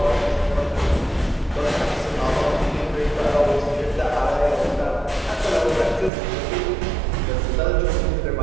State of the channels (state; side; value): drops out; left; at 6.1 s